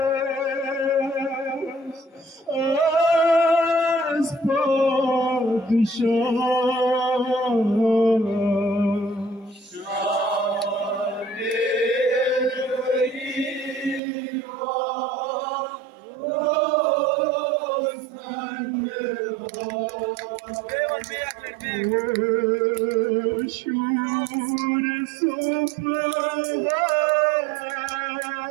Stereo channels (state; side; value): drops out; left; at 14.0 s